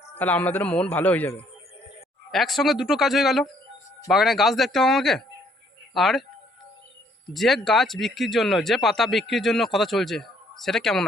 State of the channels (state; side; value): normal; both; correlation 0.65